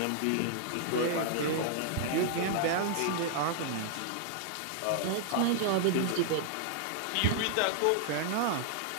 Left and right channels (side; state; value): both; different; correlation -0.01